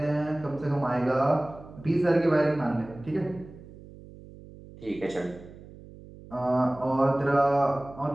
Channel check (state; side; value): noise; right; hum, 18 dB below the sound